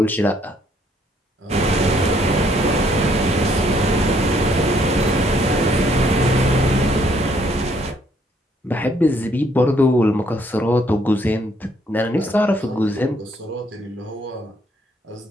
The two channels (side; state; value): both; normal; correlation 0.67